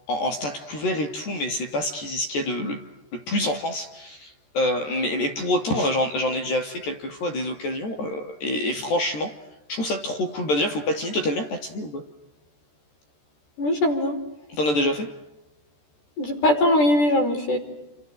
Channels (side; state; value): right; late; 14 ms